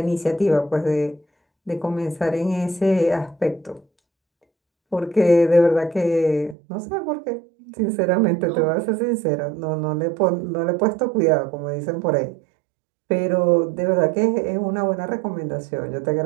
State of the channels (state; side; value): drops out; left; at 6.6 s